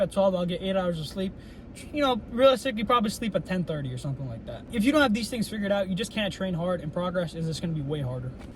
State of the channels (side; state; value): both; identical; correlation 1.00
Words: 12, I'll get 8 hours of sleep. you know, realistically probably sleep at 10:30 or something like that. If you don't have these things figured out, you just can't train hard, and progress is just going to be way harder.